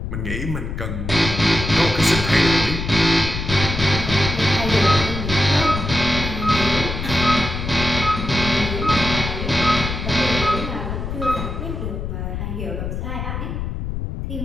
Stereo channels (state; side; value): noise; left; rumble, 5 dB below the sound